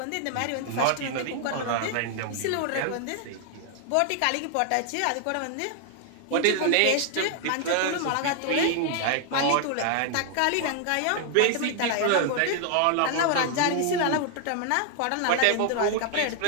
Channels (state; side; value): different; both; correlation 0.00